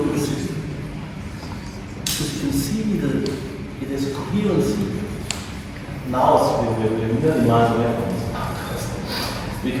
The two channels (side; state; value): both; identical; correlation 1.00